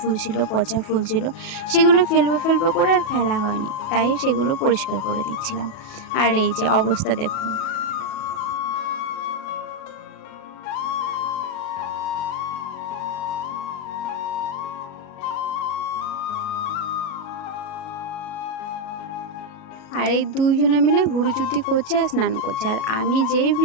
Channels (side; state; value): right; late; 37 ms